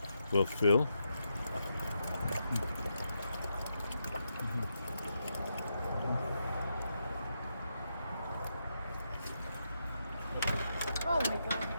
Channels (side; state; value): both; inverted; correlation -0.84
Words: will fill. Oh my god,